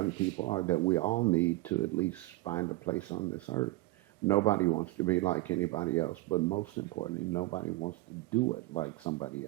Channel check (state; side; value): quieter; left; 19.4 dB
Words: people are, that we all need to at least find a place on this earth. Nobody wants to be like anybody else, but most importantly, nobody wants to do it like somebody